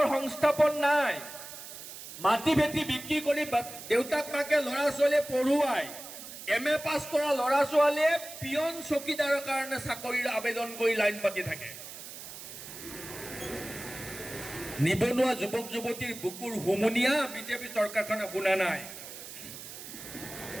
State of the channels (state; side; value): noise; right; hiss, 12 dB below the sound